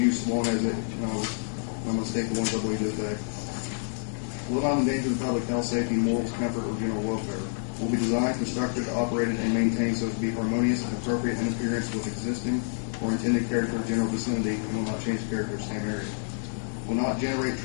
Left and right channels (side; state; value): right; silent; 59 dB below the other